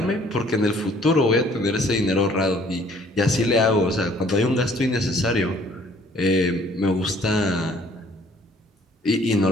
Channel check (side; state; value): both; normal; correlation 0.58